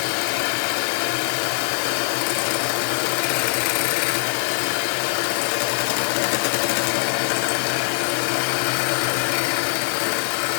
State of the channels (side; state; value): right; silent; digital silence